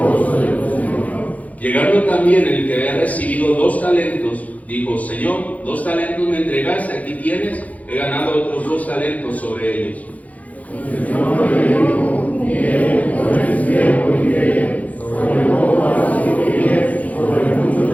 Llegando también el que había recibido 2 talentos, dijo: Señor, 2 talentos me entregaste, aquí tienes, he ganado otros 2 talentos sobre ellos.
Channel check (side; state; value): right; late; 0.072 ms